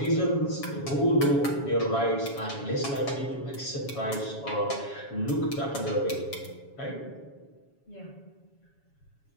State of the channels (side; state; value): right; late; 7.2 ms